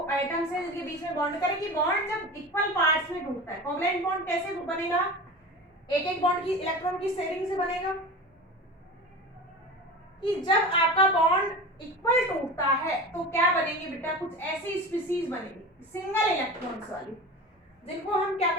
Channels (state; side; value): normal; both; correlation 0.31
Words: एटम्स हैं जिनके बीच में बॉन्ड करें, कि बॉन्ड जब इक्वल पार्ट्स में टूटता है। कोवलेंट बॉन्ड कैसे बनेगा, एक एक बॉन्ड की इलेक्ट्रॉन की शेयरिंग से बनेगा। कि जब आपका बॉन्ड इक्वल टूटता है तो क्या बनेंगे बेटा, कुछ ऐसी स्पीसीज बनेगी सिंगल इलेक्ट्रॉन्स वाली, जिनको हम क्या